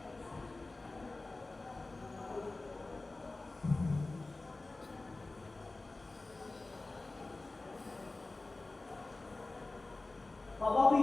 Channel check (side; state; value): right; quieter; 3.2 dB